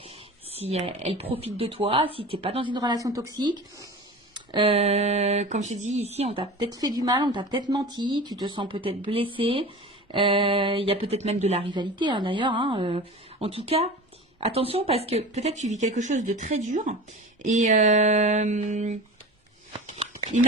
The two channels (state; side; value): normal; both; correlation 0.34